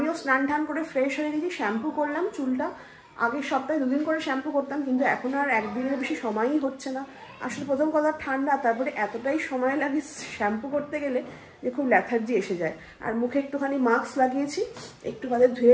স্নান টান করে ফ্রেশ হয়ে গেছি, শ্যাম্পু করলাম চুলটা। আগের সপ্তাহে 2 দিন করে শ্যাম্পু করতাম, কিন্তু এখন আর একদিনের বেশি সময়ই হচ্ছে না। আসলে প্রথম কথা ঠান্ডা, তারপরে এতটাই সময় লাগে শ্যাম্পু করতে গেলে যে খুব ল্যাথার্জি এসে যায়। আর মুখে একটুখানি মাস্ক লাগিয়েছি, একটু বাদে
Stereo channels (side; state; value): both; identical; correlation 1.00